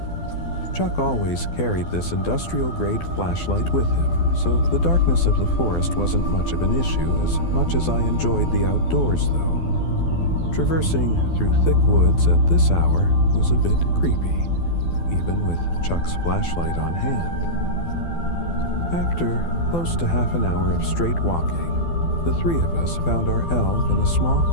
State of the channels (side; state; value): right; late; 12 ms